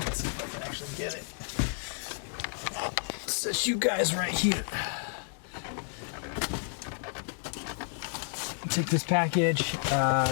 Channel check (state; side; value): silent; right; 57 dB below the other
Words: Let's see if I can actually get it. It says you guys right here. Take this package.